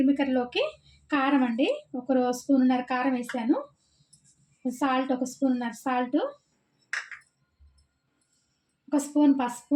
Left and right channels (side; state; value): both; identical; correlation 1.00